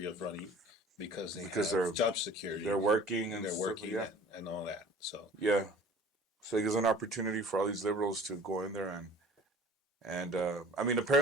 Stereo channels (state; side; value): normal; both; correlation 0.46